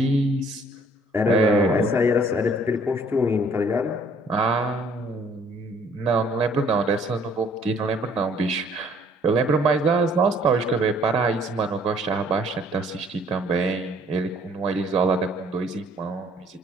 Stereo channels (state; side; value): normal; both; correlation 0.60